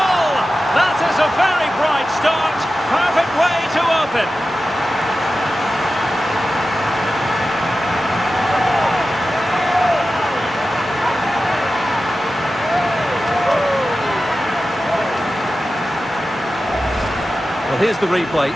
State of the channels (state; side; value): normal; both; correlation 0.93